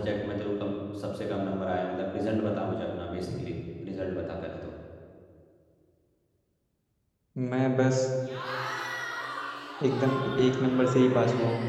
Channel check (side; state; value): both; identical; correlation 1.00